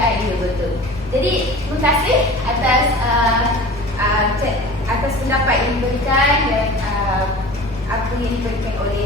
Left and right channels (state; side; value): normal; both; correlation 0.39